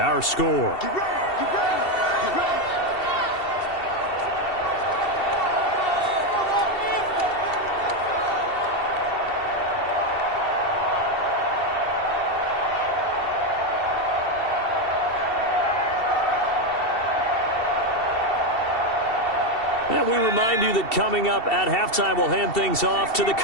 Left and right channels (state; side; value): late; right; 2.7 ms